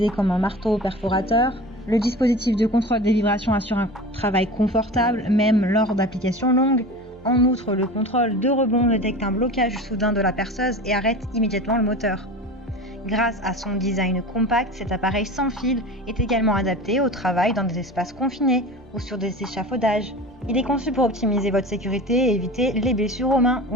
comme un marteau perforateur. Le dispositif de contrôle des vibrations assure un travail confortable, même lors d'applications longues. En outre, le contrôle de rebond détecte un blocage soudain de la perceuse et arrête immédiatement le moteur. Grâce à son design compact, cet appareil sans fil est également adapté au travail dans des espaces confinés ou sur des échafaudages. Il est conçu pour optimiser votre sécurité et éviter les blessures aux mains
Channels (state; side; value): normal; both; correlation 0.34